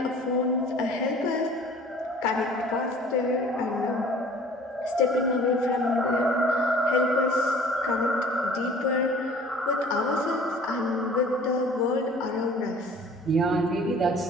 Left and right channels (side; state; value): both; normal; correlation 0.49